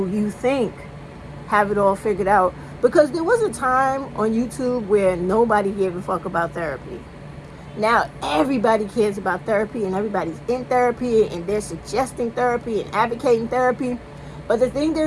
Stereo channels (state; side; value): identical; both; correlation 1.00